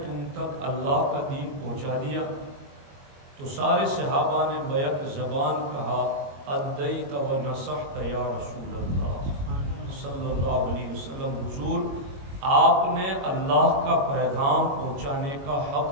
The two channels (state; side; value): late; left; 22 ms